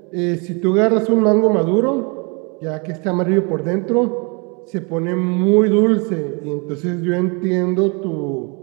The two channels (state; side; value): quieter; left; 32.4 dB